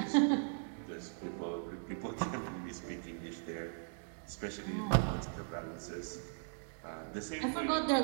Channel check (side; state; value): left; silent; digital silence